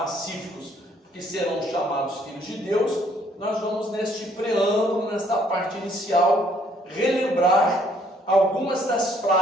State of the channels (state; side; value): normal; both; correlation 0.64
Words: que serão chamados filhos de Deus, nós vamos neste preâmbulo, nesta parte inicial, relembrar algumas das